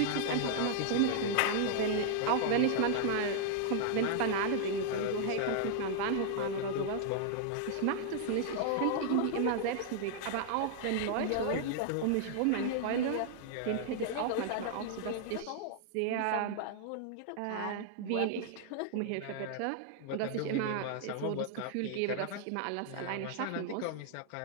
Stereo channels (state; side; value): different; both; correlation -0.01